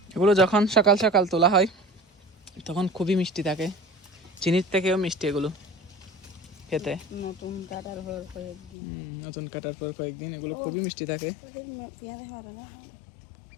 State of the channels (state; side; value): drops out; right; at 8.8 s